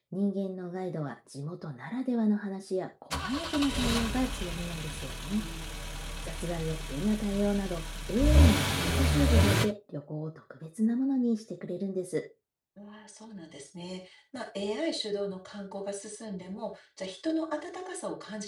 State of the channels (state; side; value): identical; both; correlation 1.00